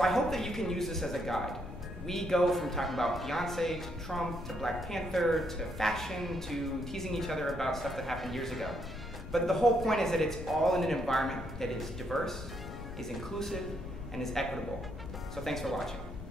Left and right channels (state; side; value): noise; left; rumble, 12 dB below the sound